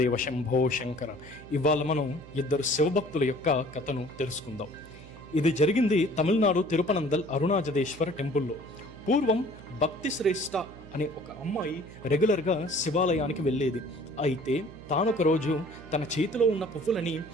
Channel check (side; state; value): right; noise; hum, 18 dB below the sound